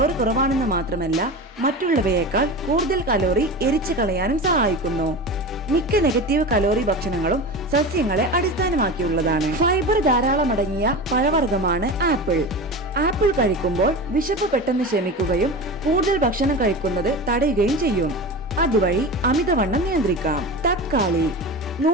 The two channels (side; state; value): both; normal; correlation 0.28